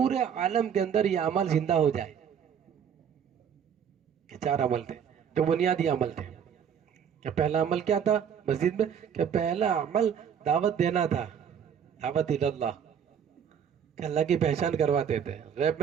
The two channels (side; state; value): left; quieter; 8.0 dB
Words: عالم کے اندر یہ عمل زندہ ہو جائے. کہ 4 عمل تھے جو بنیادی عمل تھے. کہ پہلا عمل کیا تھا مسجد میں, کہ پہلا عمل دعوت دینا تھا, دعوت اللہ, کہ اللہ کی پہچان کرواتے تھے. غیب